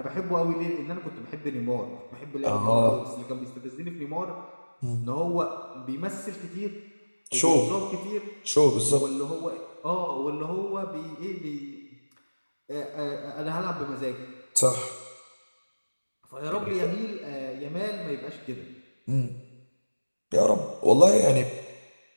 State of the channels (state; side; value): inverted; both; correlation -1.00